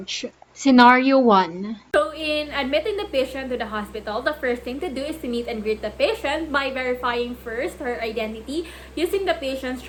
Scenario 1. So in admitting the patient to the hospital, the first thing to do is to meet and greet the patient by verifying first her identity using the patient's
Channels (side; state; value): both; identical; correlation 1.00